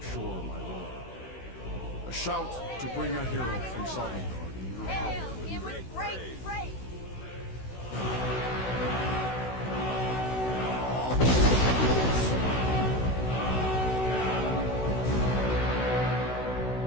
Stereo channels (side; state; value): right; late; 16 ms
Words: shore, my lord. A shout to bring a hero from Sovngarde in your Hail power. him with great praise!